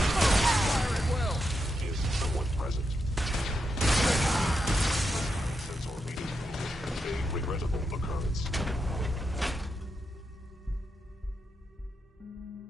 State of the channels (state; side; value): normal; both; correlation 0.85